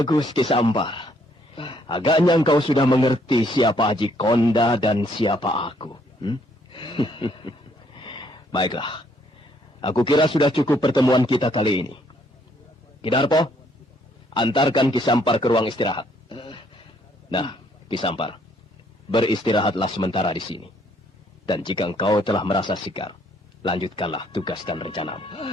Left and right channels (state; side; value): normal; both; correlation 0.68